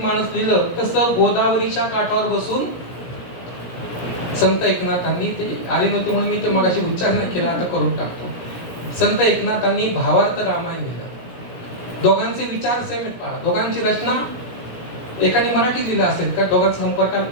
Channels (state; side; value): late; right; 17 ms